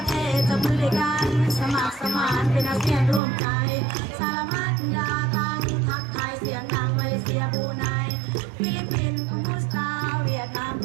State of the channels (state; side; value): drops out; left; at 3.2 s